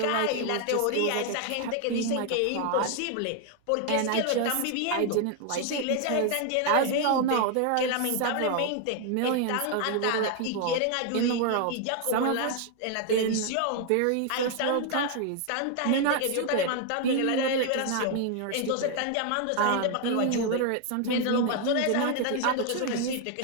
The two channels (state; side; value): different; both; correlation 0.00